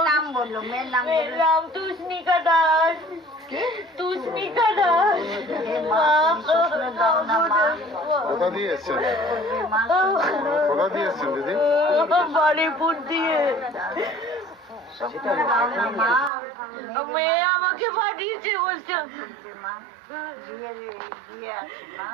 নাম বললো, মেয়ের নাম মেয়ের নাম তুষ্ণিকা দাস। তুষ্ণিকা দাস। কোথা দিয়ে এসছেন? কোথা দিয়ে এসছেন দিদি? বাড়িপুর দিয়ে। মেয়ে আমাকে পাঠিয়েছে, বলছে বিয়ে আছে মা,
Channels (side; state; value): left; drops out; at 16.3 s